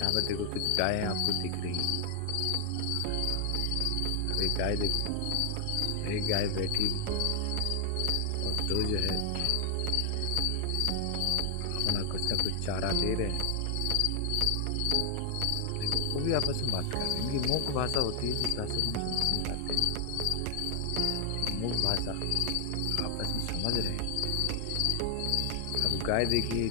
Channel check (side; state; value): both; different; correlation 0.00